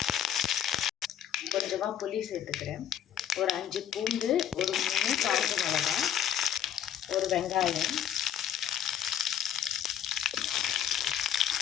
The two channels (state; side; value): quieter; right; 9.7 dB